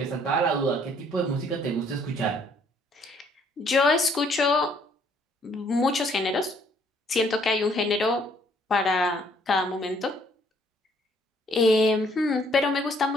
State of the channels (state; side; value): normal; both; correlation 0.64